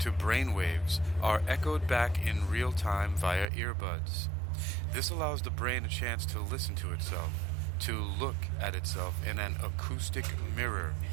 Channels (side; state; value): left; drops out; at 3.5 s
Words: to brain waves, are echoed back in real time via earbuds. This allows the brain a chance to listen to itself, to look at itself in an acoustic mirror.